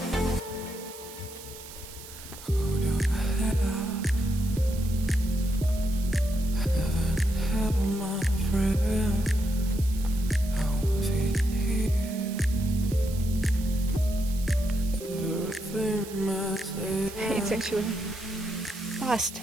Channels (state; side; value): noise; right; hiss, 15 dB below the sound